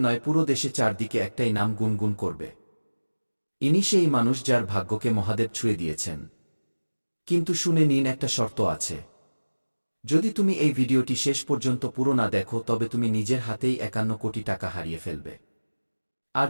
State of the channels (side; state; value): both; inverted; correlation -1.00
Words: নয়, পুরো দেশে চারদিকে একটাই নাম গুনগুন করবে। ইনি সেই মানুষ যার ভাগ্যকে মহাদেব ছুঁয়ে দিয়েছেন। কিন্তু শুনে নিন, একটা শর্ত আছে। যদি তুমি এই ভিডিওটি শেষ পর্যন্ত পুরো না দেখো তবে তুমি নিজের হাতেই ৫১ কোটি টাকা হারিয়ে ফেলবে। আর